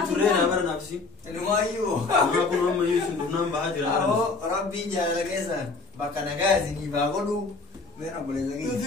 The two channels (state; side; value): quieter; right; 3.9 dB